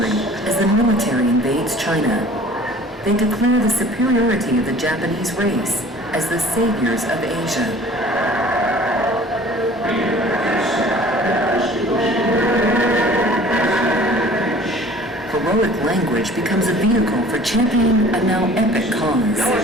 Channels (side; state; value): both; normal; correlation 0.48